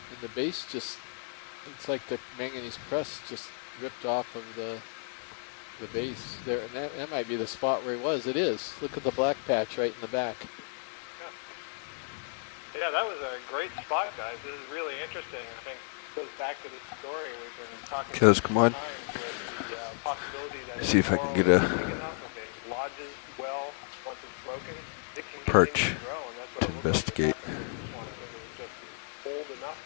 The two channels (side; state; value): right; silent; 56 dB below the other